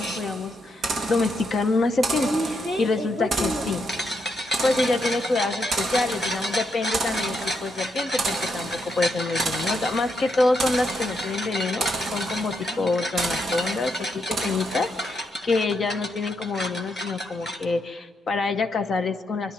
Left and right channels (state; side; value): normal; both; correlation 0.80